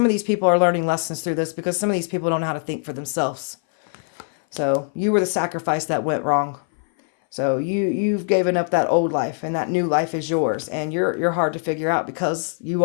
of these people are learning lessons through this because some of these people don't know how to think for themselves. So you were the sacrifice that went wrong. So you've given up that old life, and that new life is yours. And you're hard to figure out because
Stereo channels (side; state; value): right; silent; 61 dB below the other